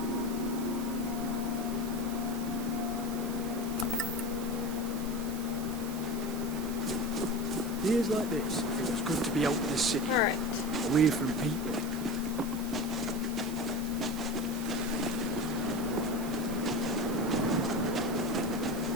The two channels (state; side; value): noise; right; hiss, 13 dB below the sound